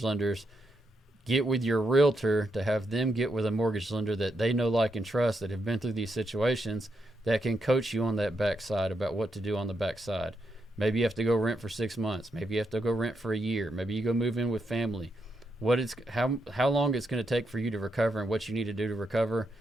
lenders. Get with your realtor to have them get with a mortgage lender that they know, like, and trust, that have been through these situations, that can coach you on that backside about what to do on the backside. Maybe you have to go rent for 6 months. Maybe you have to go rent for a year. Maybe you go move in with family. How long it's going to take for you to recover and what you need to do to recover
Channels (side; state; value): both; normal; correlation 0.82